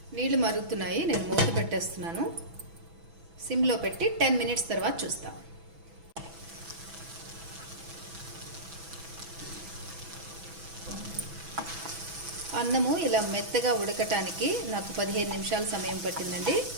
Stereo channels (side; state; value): left; late; 6.1 ms